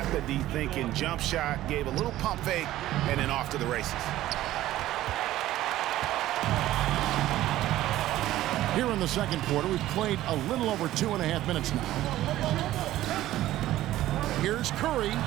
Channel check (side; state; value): left; quieter; 14.6 dB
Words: the D thinking. Jump shot. Gave a little pump fake. And then off to the races. Here in the second quarter, we've played a little over 2.5 minutes now. Here's Curry.